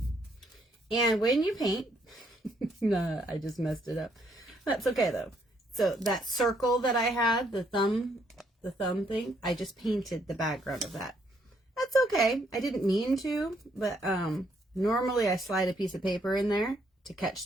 And when you paint, no, I just messed it up. That's okay though. So that circle that I had, the thumb thing, I just painted the background of that. That's okay. I didn't mean to, but normally I slide a piece of paper in there to catch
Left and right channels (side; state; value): both; normal; correlation 0.71